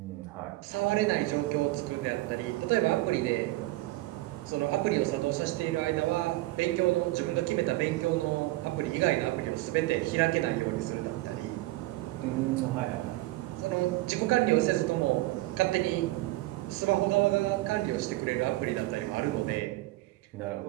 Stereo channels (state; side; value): quieter; left; 18.8 dB